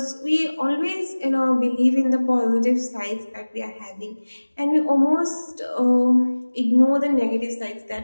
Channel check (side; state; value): both; inverted; correlation -1.00